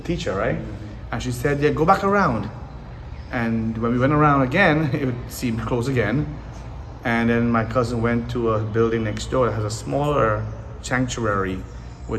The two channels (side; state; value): both; identical; correlation 1.00